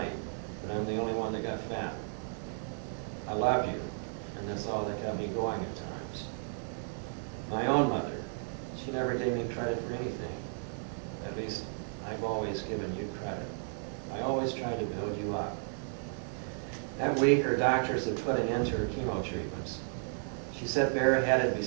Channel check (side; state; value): left; silent; digital silence